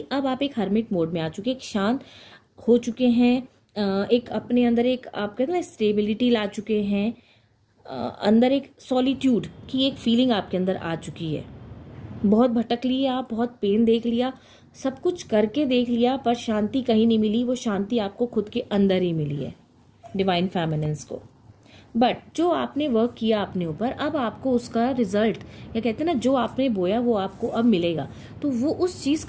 अब आप एक हर्मिट मोड में आ चुके, एक शांत हो चुके हैं, एक अपने अंदर एक आप कहते ना स्टेबिलिटी ला चुके हैं, अंदर एक सॉलिट्यूड की एक फीलिंग आपके अंदर आ चुकी है। बहुत भटक लिए आप, बहुत पेन देख लिया, सब कुछ करके देख लिया, पर शांति कहीं नहीं मिली। वो शांति आपको खुद के अंदर ही मिली है डिवाइन फेमिनिन्स को। बट जो आपने वर्क किया अपने ऊपर, अब आपको उसका रिजल्ट, या कहते हैं ना जो आपने बोया वो आपको अब मिलेगा। तो वो उस चीज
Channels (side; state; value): both; identical; correlation 1.00